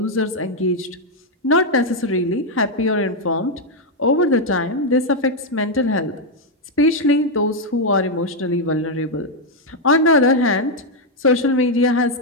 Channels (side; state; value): both; normal; correlation 0.01